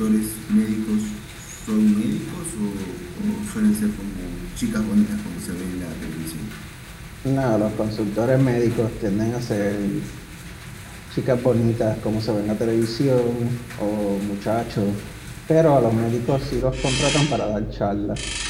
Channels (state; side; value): identical; both; correlation 1.00